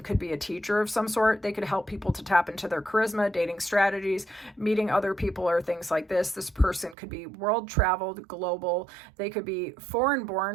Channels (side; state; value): left; drops out; at 7.0 s